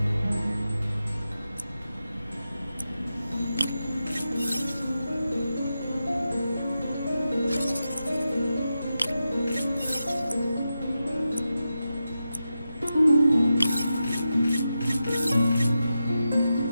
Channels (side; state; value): both; inverted; correlation -0.90